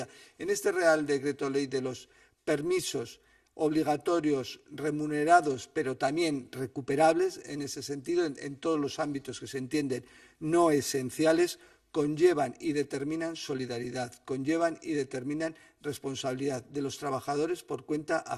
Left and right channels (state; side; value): identical; both; correlation 1.00